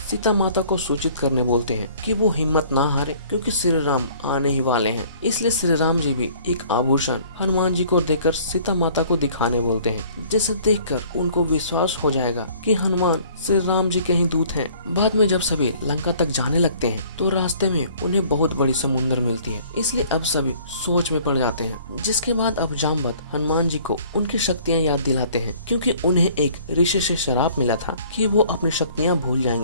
सीता माता को सूचित करने बोलते हैं कि वो हिम्मत ना हारे, क्योंकि श्री राम आने ही वाले हैं। इसलिए श्री राम जी भी एक आभूषण हनुमान जी को देकर सीता माता को दिखाने बोलते हैं, जिसे देखकर उनको विश्वास हो जाएगा कि हनुमान श्री राम जी के ही दूत हैं। बाद में जब सभी लंका तक जाने लगते हैं तो रास्ते में उन्हें बहुत बड़ी समुद्र मिलती है, इसलिए अब सभी सोच में पड़ जाते हैं। जिसके बाद अब जामवंत हनुमान जी को उनकी शक्तियाँ याद दिलाते हैं, क्योंकि उन्हें एक ऋषि से श्राप मिला था कि वो अपनी शक्तियाँ भूल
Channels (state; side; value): inverted; both; correlation -0.54